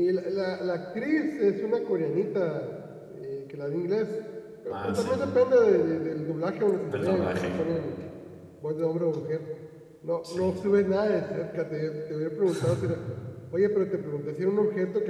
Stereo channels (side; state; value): both; identical; correlation 1.00